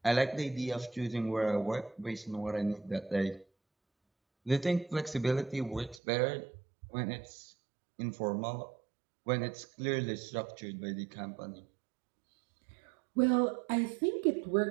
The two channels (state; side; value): drops out; left; at 6.0 s